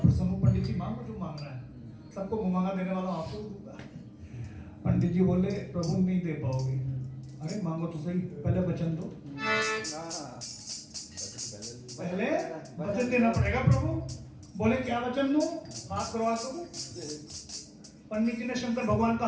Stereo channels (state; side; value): identical; both; correlation 1.00